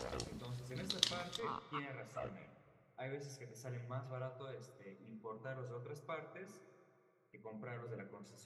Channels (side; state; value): both; identical; correlation 1.00